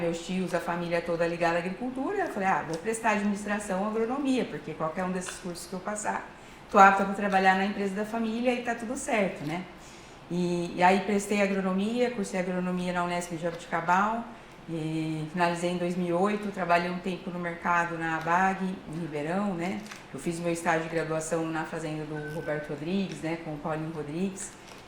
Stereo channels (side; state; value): both; identical; correlation 1.00